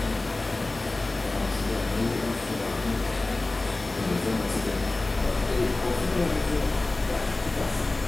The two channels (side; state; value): right; quieter; 3.0 dB